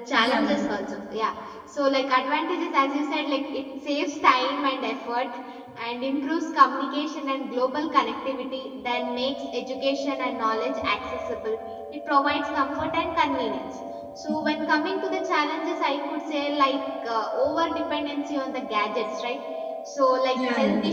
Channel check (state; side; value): identical; both; correlation 1.00